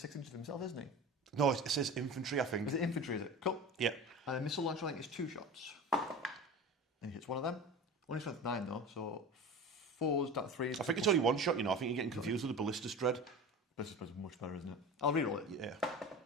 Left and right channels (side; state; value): both; normal; correlation 0.32